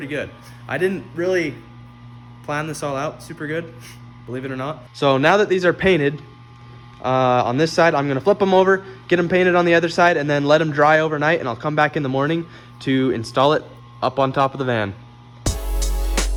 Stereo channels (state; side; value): identical; both; correlation 1.00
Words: good. I didn't really plan this all out super good, believe it or not. So now that these are painted on this side, I'm gonna flip them over, get them painted on the other side, and then let them dry overnight, and I'll come back in the morning to install it up on top of the van.